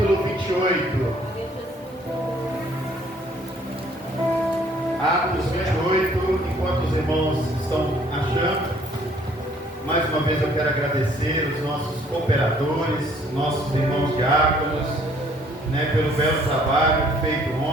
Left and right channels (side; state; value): both; normal; correlation 0.60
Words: 28. Atos 28. Enquanto os irmãos estão achando, mais uma vez eu quero agradecer os nossos cooperadores, nossos irmãos diáconos, pelo belo trabalho feito